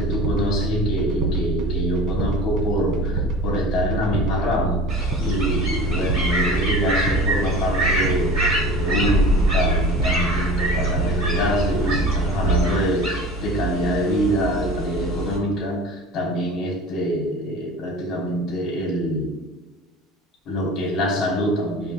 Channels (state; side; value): normal; both; correlation 0.39